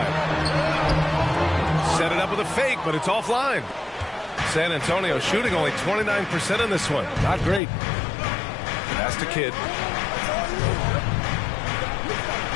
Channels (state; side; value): drops out; right; at 7.6 s